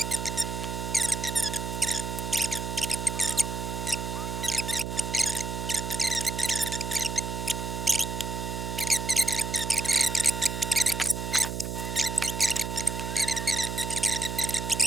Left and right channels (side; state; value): right; noise; hum, 4 dB below the sound